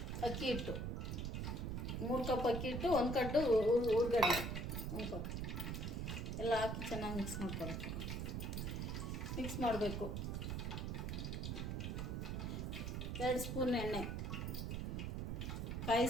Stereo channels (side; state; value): right; noise; rumble, 2 dB below the sound